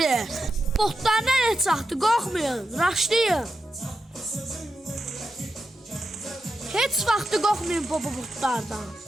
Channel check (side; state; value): both; normal; correlation 0.88